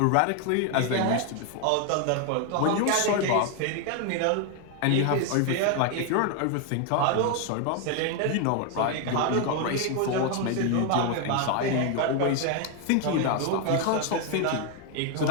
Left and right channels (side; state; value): both; different; correlation 0.01